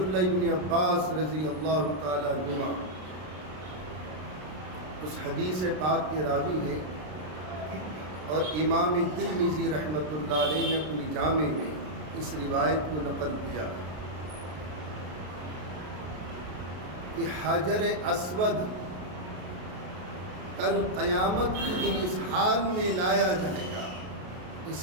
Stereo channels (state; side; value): late; left; 33 ms